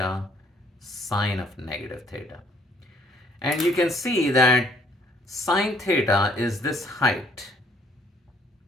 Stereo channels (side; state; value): both; normal; correlation 0.63